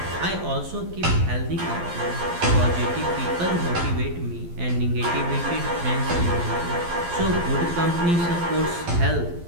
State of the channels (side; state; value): left; late; 12 ms